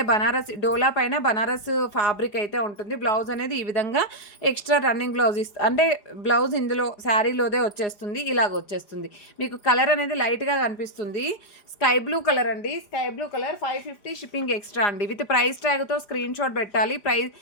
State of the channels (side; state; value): right; late; 4.9 ms